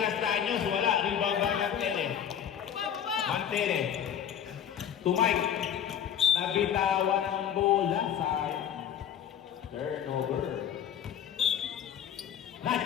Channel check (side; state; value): right; quieter; 9.2 dB